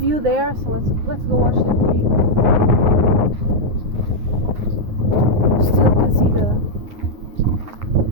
there, so let's go watch the view. Still can see the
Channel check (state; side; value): late; left; 9.6 ms